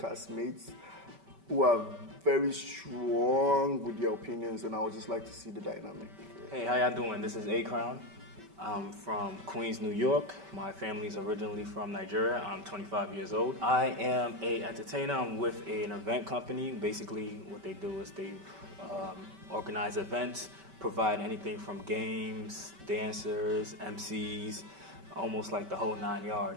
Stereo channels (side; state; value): left; late; 5.2 ms